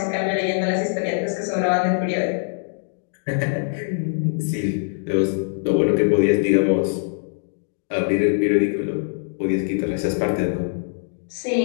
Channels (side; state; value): right; silent; digital silence